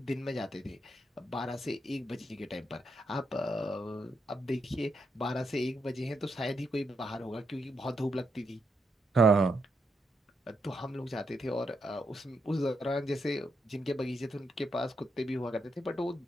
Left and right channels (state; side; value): normal; both; correlation 0.81